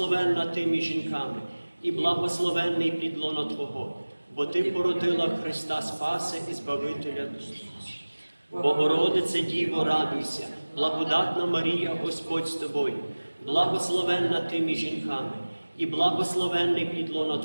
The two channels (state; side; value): inverted; both; correlation -1.00